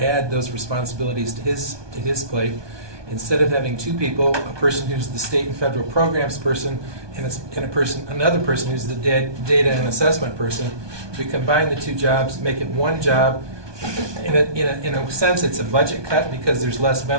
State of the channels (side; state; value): left; late; 1.2 ms